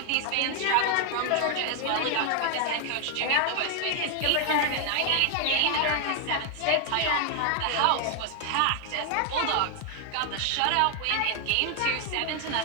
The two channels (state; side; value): different; both; correlation 0.01